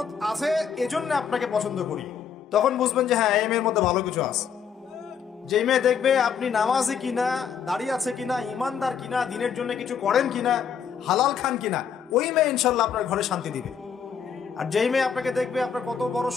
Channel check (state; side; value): quieter; right; 7.2 dB